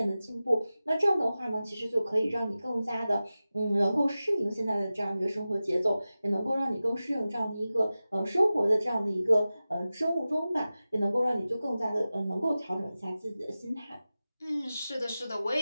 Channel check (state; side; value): inverted; both; correlation -0.95